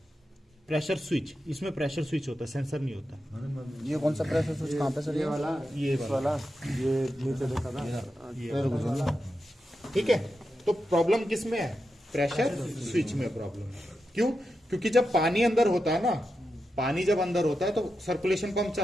प्रेशर स्विच, इसमें प्रेशर स्विच होता है, सेंसर नहीं होता। ये कौन सा प्रेशर स्विच कहाँ पे सर, ये वाला, ये नीचे देखा था। ठीक है, तो प्रॉब्लम किस में है, प्रेशर स्विच में प्रॉब्लम है। क्यों, क्योंकि जब पानी अंदर होता है ना, पानी जब अंदर होता है तो सर्कुलेशन पंप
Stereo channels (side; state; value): both; normal; correlation 0.88